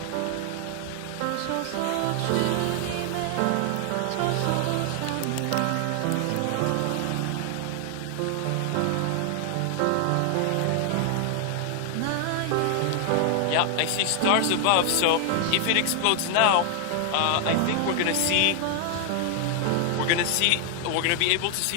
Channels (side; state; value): both; different; correlation 0.00